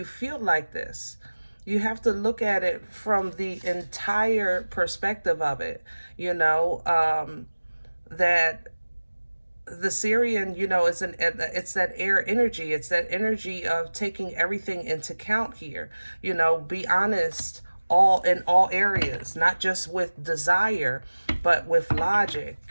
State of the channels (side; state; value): both; inverted; correlation -1.00